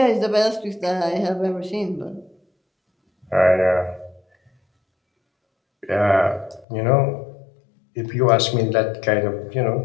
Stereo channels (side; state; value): right; drops out; at 6.7 s